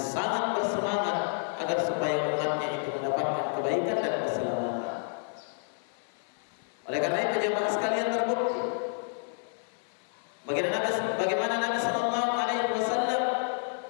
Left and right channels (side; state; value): right; silent; 57 dB below the other